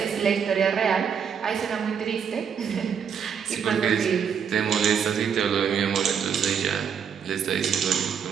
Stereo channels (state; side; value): quieter; left; 7.3 dB